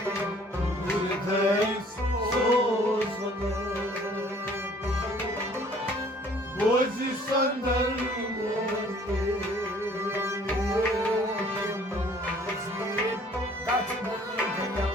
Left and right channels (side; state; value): both; normal; correlation 0.56